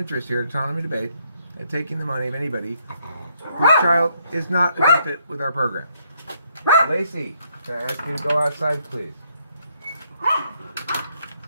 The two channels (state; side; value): inverted; both; correlation -0.72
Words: here at Autonomy Debate at taking the money of anybody whose child is not a good fit with our program. Lacey, can I ask you to go outside, please?